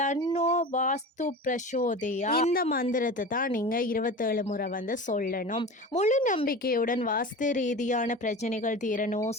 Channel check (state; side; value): normal; both; correlation 0.32